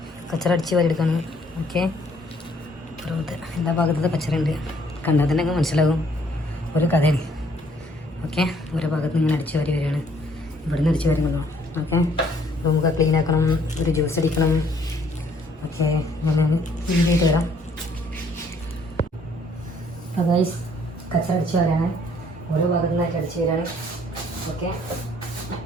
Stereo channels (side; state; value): both; normal; correlation 0.63